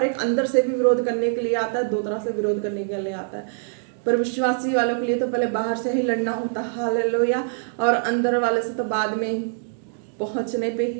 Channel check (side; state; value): left; silent; digital silence